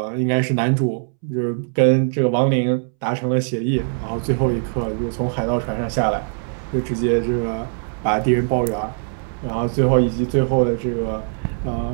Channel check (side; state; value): left; silent; 65 dB below the other